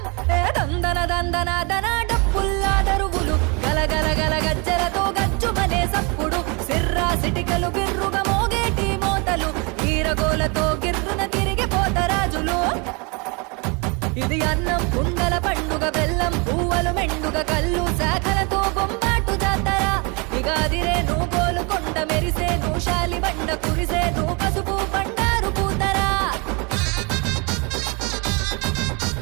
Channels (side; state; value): left; quieter; 30.8 dB